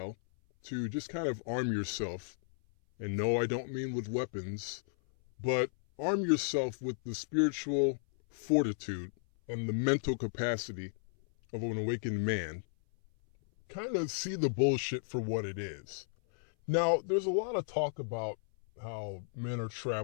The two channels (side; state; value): right; silent; 55 dB below the other